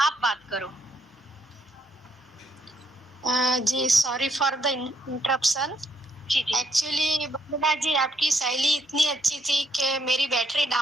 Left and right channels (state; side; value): normal; both; correlation 0.73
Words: बात करो। जी सॉरी फॉर द इंटरप्शन। जी जी। एक्चुअली वंदना जी आपकी शैली इतनी अच्छी थी कि मेरी बैटरी